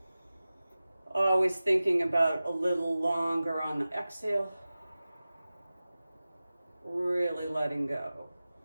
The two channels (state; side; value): inverted; both; correlation -0.96